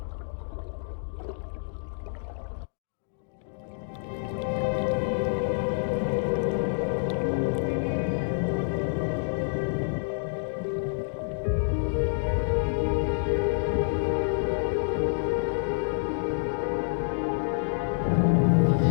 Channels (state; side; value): silent; right; digital silence